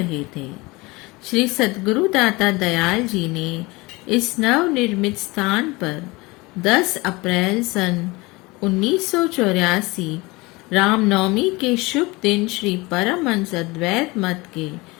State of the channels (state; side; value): quieter; right; 23.4 dB